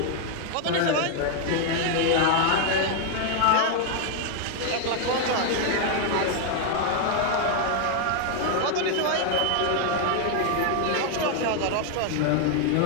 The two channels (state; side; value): different; both; correlation 0.00